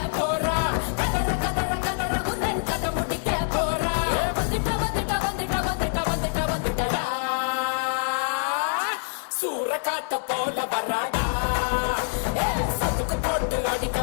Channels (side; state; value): right; silent; 56 dB below the other